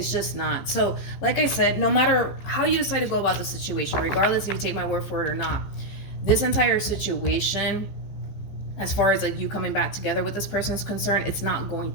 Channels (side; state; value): right; late; 14 ms